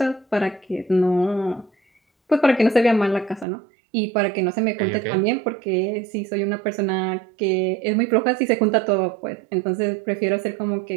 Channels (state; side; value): drops out; left; at 3.5 s